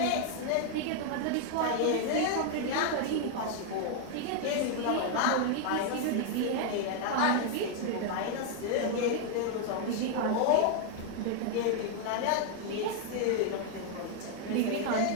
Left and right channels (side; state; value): both; different; correlation 0.00